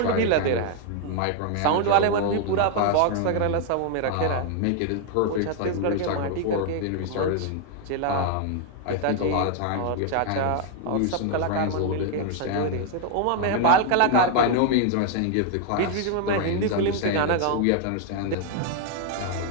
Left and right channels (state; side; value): different; both; correlation 0.00